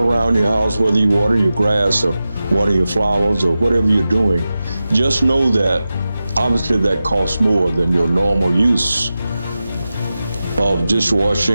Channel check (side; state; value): both; inverted; correlation -0.93